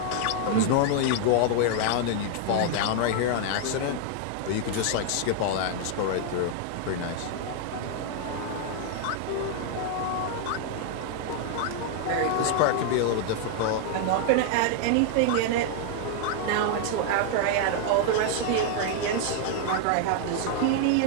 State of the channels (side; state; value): both; different; correlation 0.00